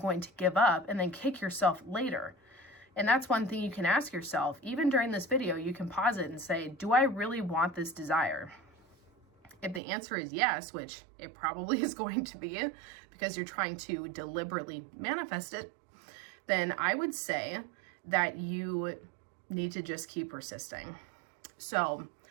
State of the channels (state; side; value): drops out; left; at 9.8 s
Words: to give up and then kick yourself later? And that's one thing you can ask yourself. Even during this video, you can pause it and say, do I really want this desire? If the answer is yes, which it probably is going to be because you're trying to deliberately manifest it, then I would say that you need to just keep persisting. So